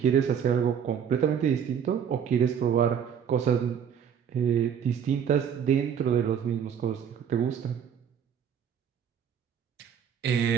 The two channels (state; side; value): quieter; left; 8.1 dB